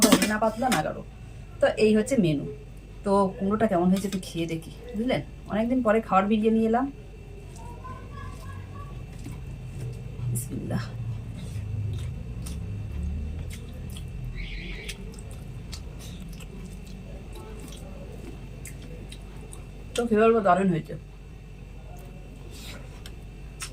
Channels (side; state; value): both; identical; correlation 1.00